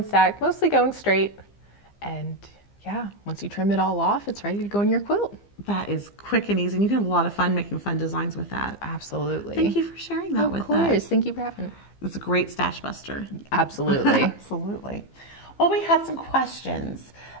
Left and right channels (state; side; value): late; right; 15 ms